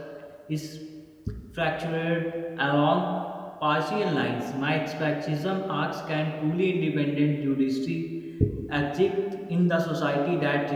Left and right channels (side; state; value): both; identical; correlation 1.00